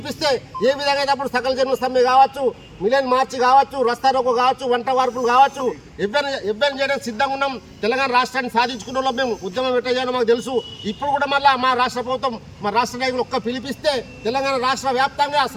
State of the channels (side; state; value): both; identical; correlation 1.00